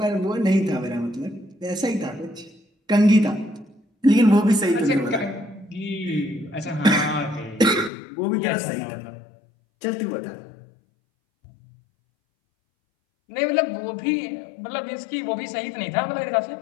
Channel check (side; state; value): right; drops out; at 7.9 s